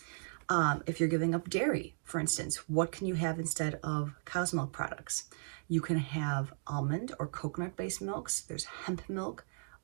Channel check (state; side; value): silent; left; digital silence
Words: If you're giving up dairy, for instance, what can you have instead of cow's milk products? You can have almond or coconut-based milks. There's hemp milk,